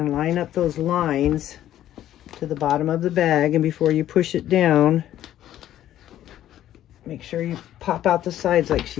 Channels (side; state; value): right; quieter; 12.2 dB